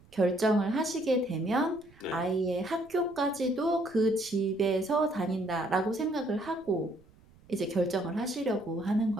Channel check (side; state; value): right; noise; rumble, 27 dB below the sound